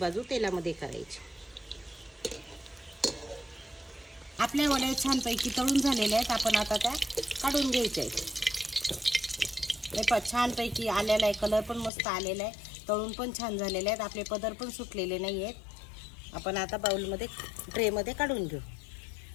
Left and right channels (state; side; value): drops out; right; at 11.9 s